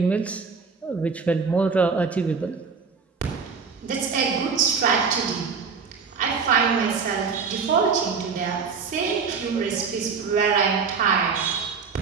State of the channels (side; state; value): left; quieter; 5.4 dB